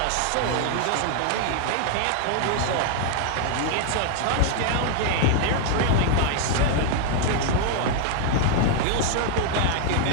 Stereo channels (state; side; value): different; both; correlation 0.00